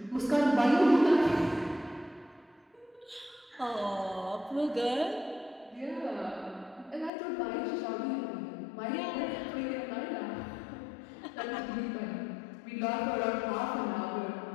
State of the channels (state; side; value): drops out; right; at 7.1 s